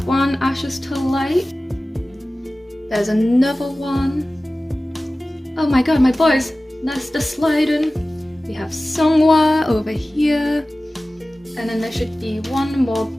one Ashes to Light. There's another one. Oh my god, my boys, that's the sliding. We have Songhwa over here. And then there should be one more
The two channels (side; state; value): both; normal; correlation 0.97